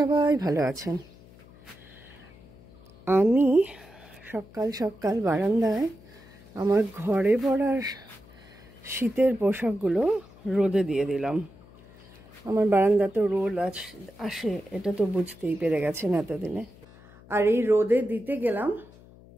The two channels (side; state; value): left; noise; hum, 23 dB below the sound